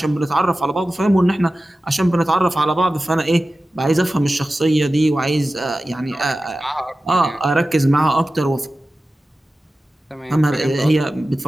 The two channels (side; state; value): both; normal; correlation 0.95